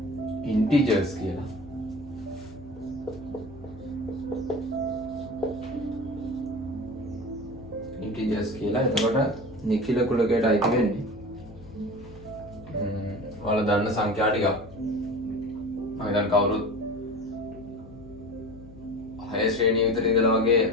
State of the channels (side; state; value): left; noise; hum, 19 dB below the sound